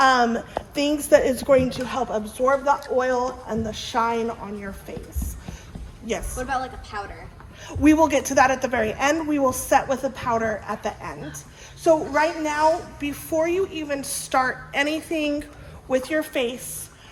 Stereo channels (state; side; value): identical; both; correlation 1.00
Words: things that is going to help absorb the oil and the shine on your face. Yes. What about like a powder? We will get to that at the very end. We will set with a powder at the end. So right now, before you even start anything with your face,